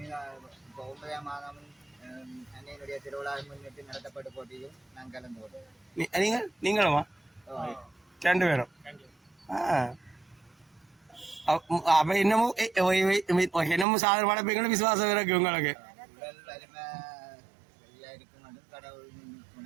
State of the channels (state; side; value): drops out; left; at 13.9 s